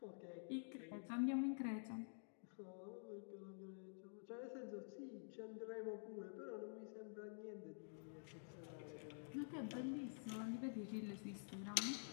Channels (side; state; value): right; silent; digital silence